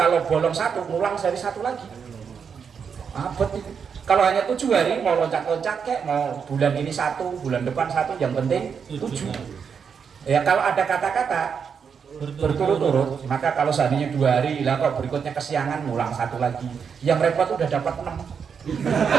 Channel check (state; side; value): quieter; left; 6.6 dB